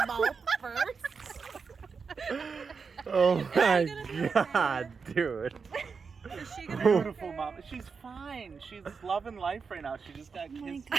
mouth first. Oh my god, dude. Is she gonna Beautiful mom. She's fine. She's loving life right now. She just got kissed.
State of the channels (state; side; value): quieter; left; 5.4 dB